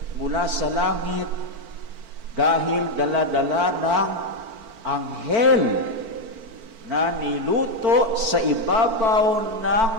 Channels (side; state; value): left; late; 4.5 ms